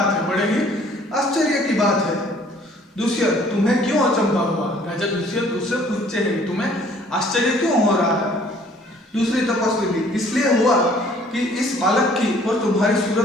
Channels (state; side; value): normal; both; correlation 0.57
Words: है, बड़े ही आश्चर्य की बात है। दुष्यंत, तुम्हें क्यों अचंभा हुआ? राजा दुष्यंत उससे पूछते हैं तुम्हें आश्चर्य क्यों हो रहा है? दूसरी तपस्विनी, इसलिए हुआ कि इस बालक की और तुम्हारी